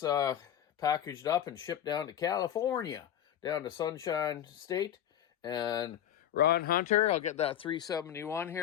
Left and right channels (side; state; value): right; quieter; 10.5 dB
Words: packaged up and shipped down to California, down to Sunshine State. And Ron Hunter, I'll get that 371